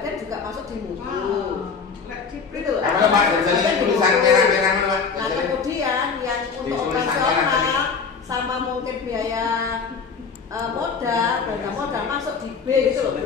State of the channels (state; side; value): quieter; right; 5.4 dB